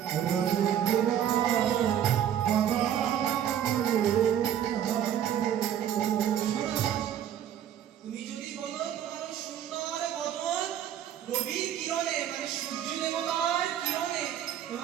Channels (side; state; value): left; quieter; 10.1 dB